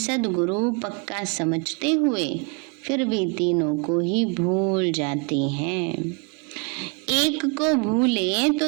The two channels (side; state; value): left; quieter; 33.7 dB